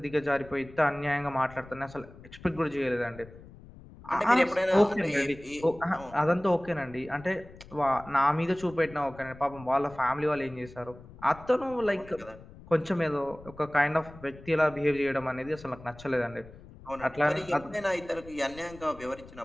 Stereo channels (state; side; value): noise; left; rumble, 19 dB below the sound